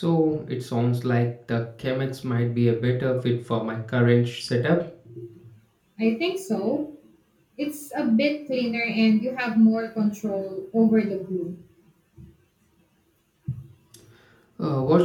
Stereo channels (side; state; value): both; identical; correlation 1.00